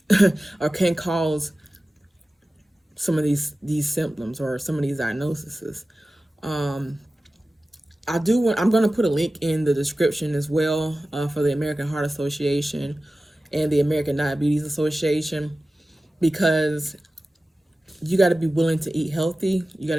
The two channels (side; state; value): both; normal; correlation 0.95